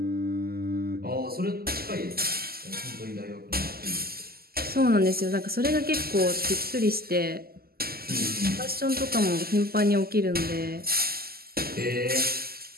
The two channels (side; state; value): left; late; 0.45 ms